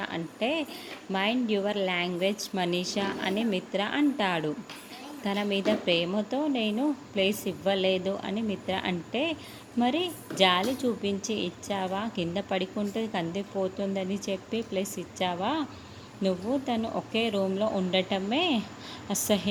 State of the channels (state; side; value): identical; both; correlation 1.00